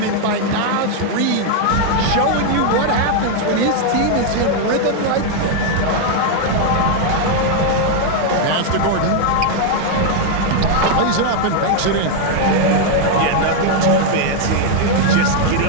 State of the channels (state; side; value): different; both; correlation 0.00